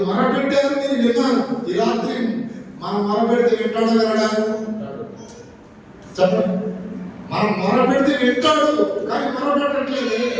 మొరపెట్టారు, నేను విన్నాను. ఈ రాత్రి మనం మొరపెడితే వింటాడు వినడా? చెప్పండి. మనం మొరపెడితే వింటాడు కానీ మొరపెట్టట్లేదు.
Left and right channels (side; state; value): both; identical; correlation 1.00